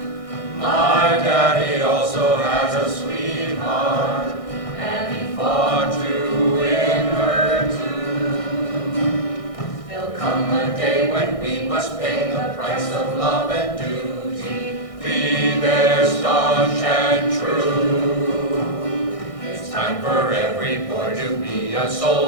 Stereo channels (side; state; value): right; late; 1.6 ms